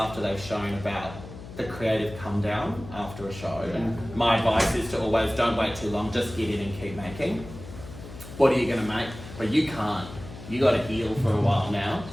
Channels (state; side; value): noise; left; hum, 14 dB below the sound